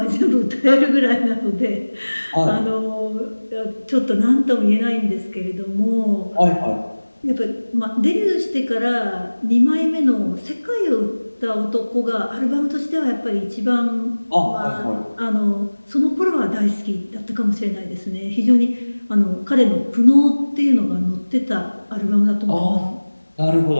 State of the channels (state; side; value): inverted; both; correlation -1.00